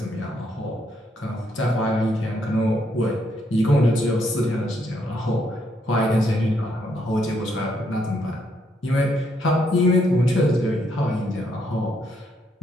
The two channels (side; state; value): both; normal; correlation 0.74